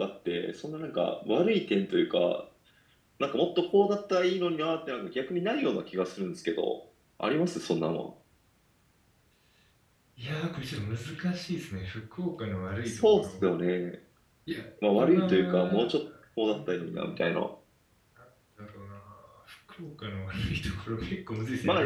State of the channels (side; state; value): both; identical; correlation 1.00